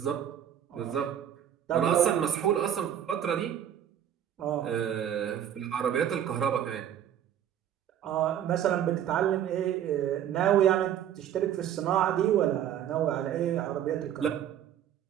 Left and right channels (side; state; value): left; quieter; 10.2 dB